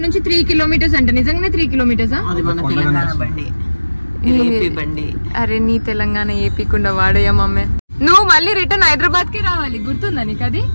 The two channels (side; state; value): both; inverted; correlation -1.00